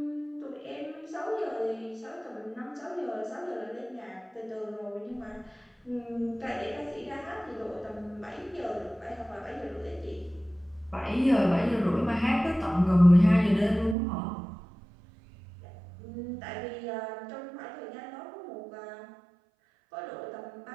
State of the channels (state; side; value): drops out; left; at 14.0 s